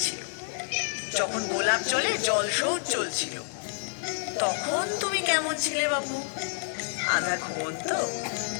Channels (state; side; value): silent; right; digital silence